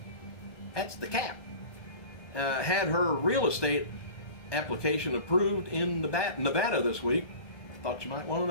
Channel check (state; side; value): late; right; 1.2 ms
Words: That's the Cap. Had her real estate application approved in Nevada this week. Thought you might want to